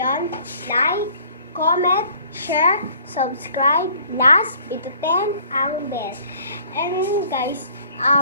Like, comment, share, subscribe, last, pitutin ang bell. And guys,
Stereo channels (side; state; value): both; inverted; correlation -0.55